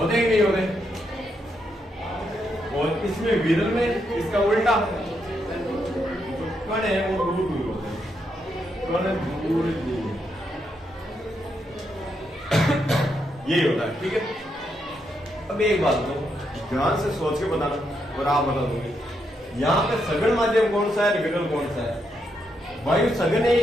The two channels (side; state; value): both; normal; correlation 0.80